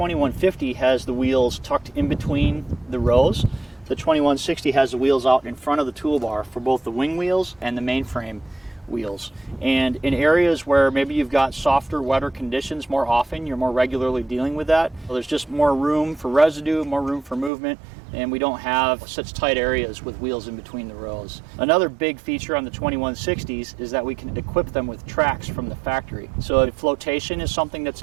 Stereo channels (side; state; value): left; drops out; at 17.5 s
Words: has the wheels tucked in between the rows, the 2160 has the wheels out in front of the toolbar for both the wing wheels and the mainframe wheels. And in areas where maybe you've got softer, wetter conditions more often, you're more regularly dealing with that, well, there's just more room for residue, more room for movement, and we don't have such tight areas with wheels in between the rows. Another big feature on the 2160s is that we can equip them with tracks from the factory. So if flotation is something that's